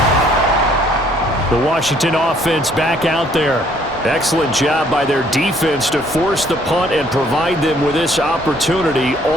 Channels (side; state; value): both; normal; correlation 0.63